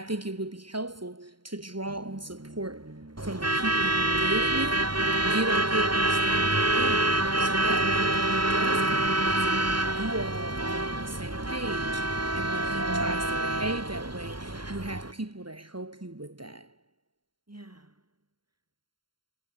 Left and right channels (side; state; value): left; late; 0.73 ms